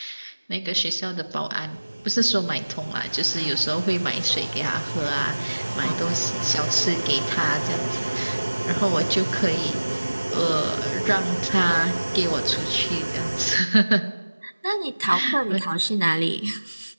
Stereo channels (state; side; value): inverted; both; correlation -1.00